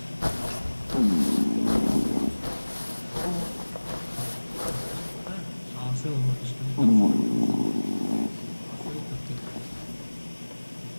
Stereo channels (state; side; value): inverted; both; correlation -1.00